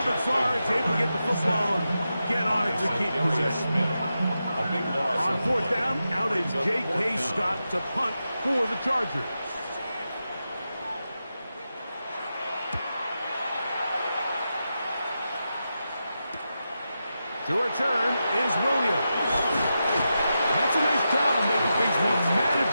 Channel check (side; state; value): both; inverted; correlation -0.89